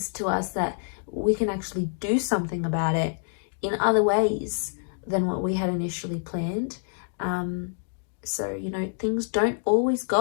to us that we can actually do something about it in other ways than what we had initially planned. So, you know, things don't always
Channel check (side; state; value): right; silent; digital silence